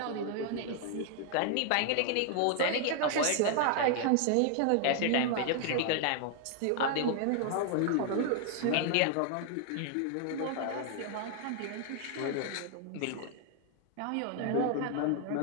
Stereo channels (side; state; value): both; different; correlation 0.00